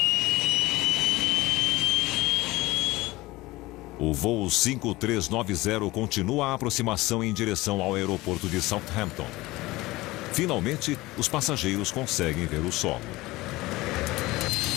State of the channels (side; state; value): right; quieter; 19.8 dB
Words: O voo 5390 continua a aproximação em direção ao aeroporto de Southampton. Finalmente, os passageiros conseguem ver o solo.